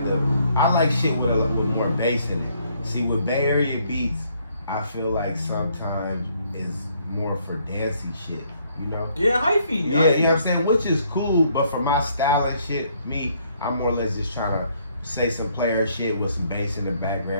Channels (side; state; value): both; inverted; correlation -0.68